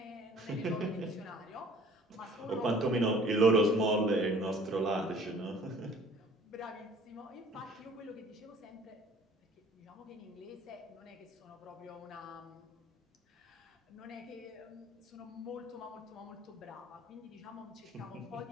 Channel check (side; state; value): both; normal; correlation 0.52